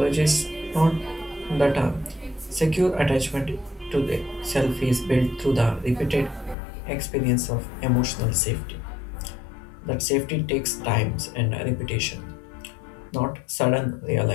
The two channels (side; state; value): right; drops out; at 6.6 s